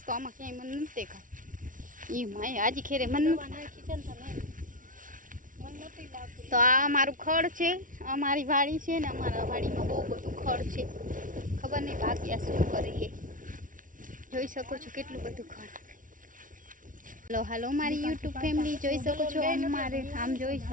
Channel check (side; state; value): left; late; 0.38 ms